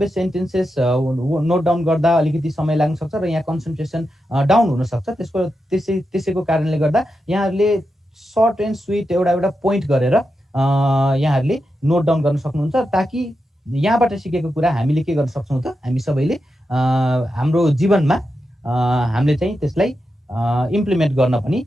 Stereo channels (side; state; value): both; normal; correlation 0.88